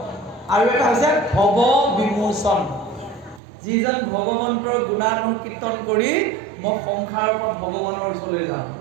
আৰু এটা হৈছে ভৱ বিমোচন, যিজন ভগৱন্তৰ গুণানুকীৰ্তন কৰি মই সংসাৰৰ পৰা ভগৱানৰ ওচৰলৈ যাম।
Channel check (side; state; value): left; drops out; at 3.4 s